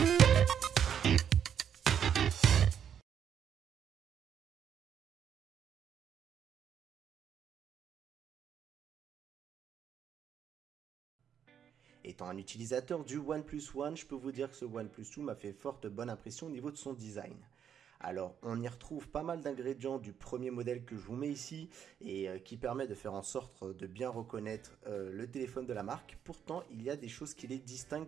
Étant un utilisateur du OnePlus One, je peux vous dire que ce OnePlus 2 m'a fait forte bonne impression au niveau de son design. Alors, on y retrouve pas mal d'ingrédients du premier modèle que je vous mets ici et qui permet de faire en sorte de bien reconnaître le téléphone de la marque. Pourtant, il y a des choses qui les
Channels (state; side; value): quieter; left; 8.6 dB